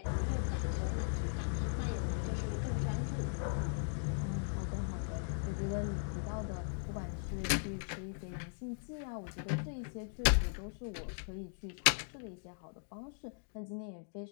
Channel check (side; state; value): right; silent; digital silence